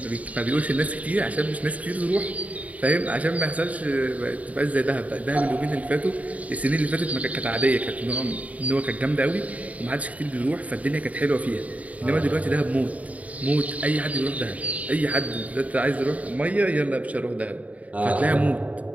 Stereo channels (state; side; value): late; left; 0.070 ms